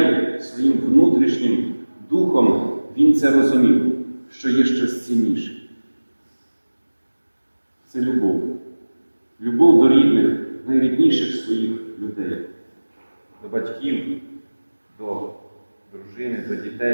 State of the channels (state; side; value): inverted; both; correlation -1.00